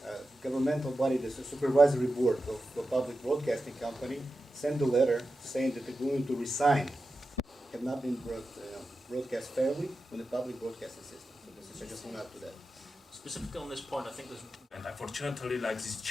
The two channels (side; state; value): both; normal; correlation 0.91